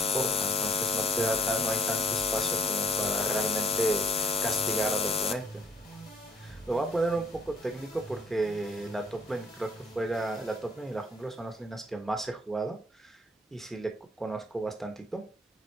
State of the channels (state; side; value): normal; both; correlation 0.60